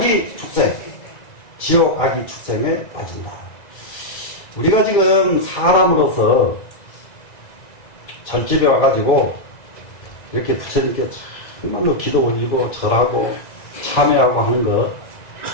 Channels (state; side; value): late; right; 2.0 ms